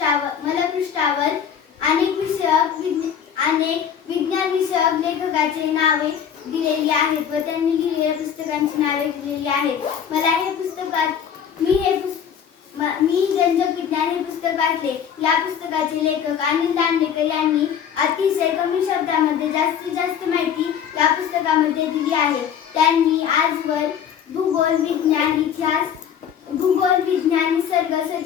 अनेक विज्ञान विषयक लेखकाची नावे दिलेली आहेत व त्यांनी लिहिलेल्या पुस्तकांची नावे दिलेली आहेत. मी रंजक विज्ञान हे पुस्तक वाचले. या पुस्तकाचे लेखक अनिल दांडेकर यांनी अतिशय कमी शब्दामध्ये जास्तीत जास्त माहिती या पुस्तकामध्ये दिली आहे. त्यांनी आजवर भूगोल, विज्ञान, इतिहास, निसर्ग,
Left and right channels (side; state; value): right; quieter; 8.3 dB